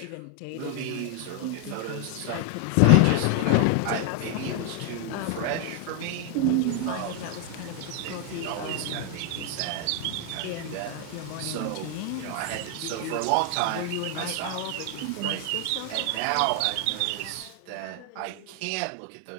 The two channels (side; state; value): both; different; correlation 0.00